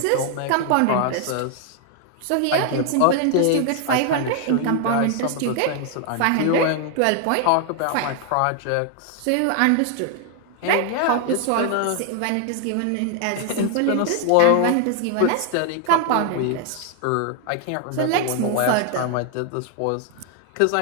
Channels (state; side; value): different; both; correlation 0.00